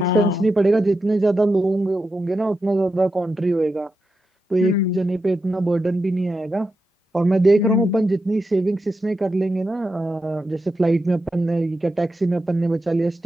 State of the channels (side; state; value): both; normal; correlation 0.88